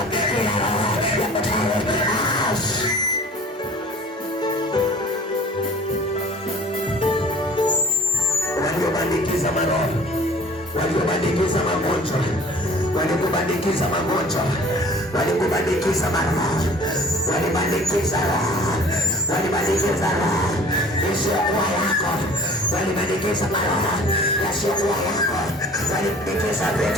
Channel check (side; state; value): both; normal; correlation 0.48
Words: kila roho ya kutalo waliobandikiza maroho, waliobandikiza magonjwa, walikubandikiza magonjwa, walikubandikiza maroho, walibandikiza roho, walibandikiza roho isiyokuwa yako, walibandikiza maroho yasiyokuwa yako, walibandikiza